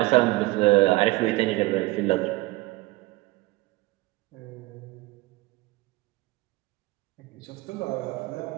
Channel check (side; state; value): left; quieter; 20.8 dB